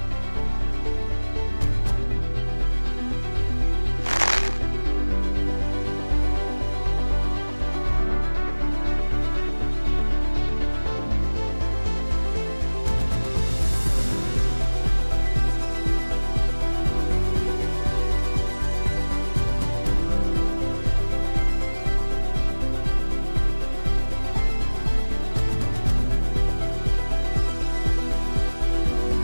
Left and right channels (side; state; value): both; inverted; correlation -1.00